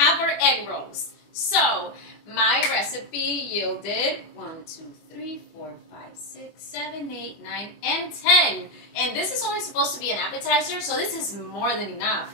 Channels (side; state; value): right; late; 25 ms